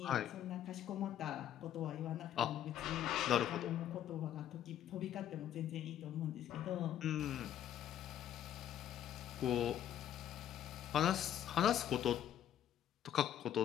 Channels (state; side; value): quieter; right; 10.7 dB